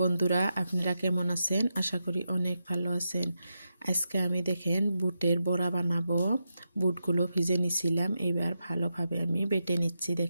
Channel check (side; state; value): both; inverted; correlation -0.87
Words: বন্ধুরা, আপনারা কেমন আছেন? আশা করি অনেক ভালো আছেন। আজকে আমি দেখেন বুটের বড়া বানাবো। বুটগুলো ভিজে নিছিলাম, এবার ভালোভাবে আমি বেটে নিচ্ছি।